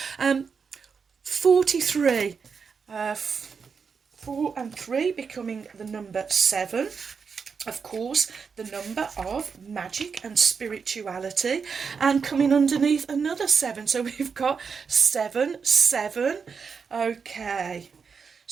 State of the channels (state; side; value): quieter; left; 5.8 dB